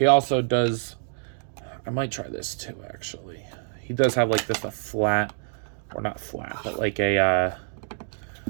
also does, I might try this too, actually. He does have like this, a flat or not flat, but like a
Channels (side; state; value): left; silent; 61 dB below the other